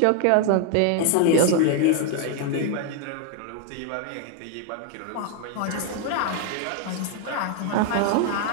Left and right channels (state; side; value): different; both; correlation 0.00